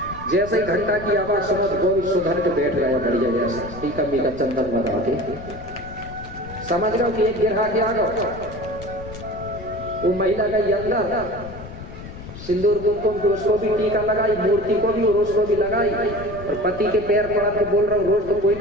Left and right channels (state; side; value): noise; left; rumble, 13 dB below the sound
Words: जैसे ही घंटा की आवाज सुनो गोल सुधर के बैठ गया बढ़िया, जैसा टीका मीका चंदन लगा के, समझ रहे हो कि एक गिरा के आ गया। वो महिला गई अंदर, सिंदूर कुमकुम को उसको भी टीका लगाई, मूर्ति को भी और उसको भी लगाई, और पति के पैर पड़ा के बोल रहा हूँ, रोज तो कोई